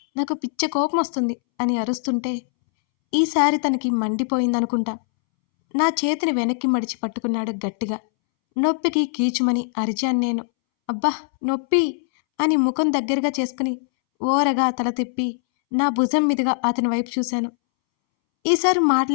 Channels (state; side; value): silent; right; 64 dB below the other